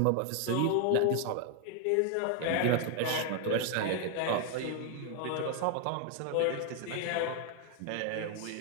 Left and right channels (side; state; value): both; different; correlation 0.00